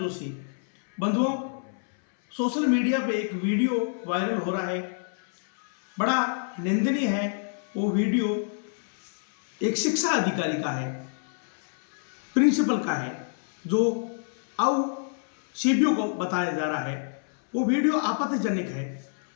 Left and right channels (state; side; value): silent; right; 60 dB below the other